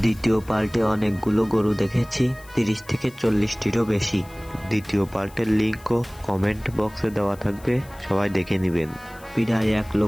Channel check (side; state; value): left; noise; hiss, 24 dB below the sound